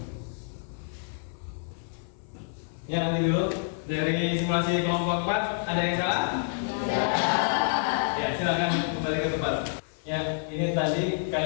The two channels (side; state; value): right; silent; 57 dB below the other